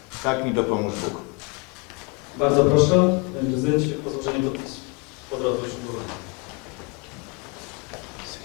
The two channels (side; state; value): right; quieter; 29.8 dB